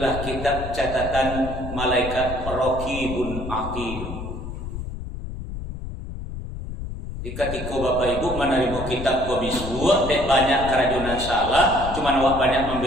kitab catatan malaikat Raqibun Atid. Ketika Bapak Ibu menerima kitab kau bisbuat, banyak kerajunan salah, cuman awak banyak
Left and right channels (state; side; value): noise; left; rumble, 8 dB below the sound